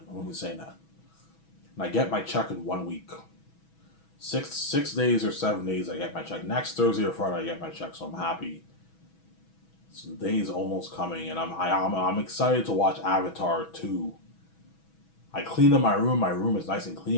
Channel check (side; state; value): right; late; 6.2 ms